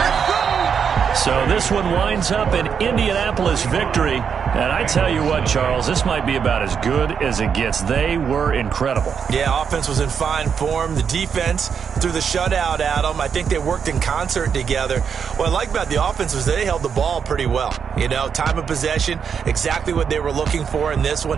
So this one winds up an Indianapolis victory. And I tell you what, Charles, this might be about as good as it gets. They were incredible. Yeah, offense was in fine form. The defense threw the shutout at them. I think they worked in concert together. What I like about the offense was they held the ball pretty well. You know, time of possession, exactly what they were looking for in this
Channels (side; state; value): left; quieter; 6.9 dB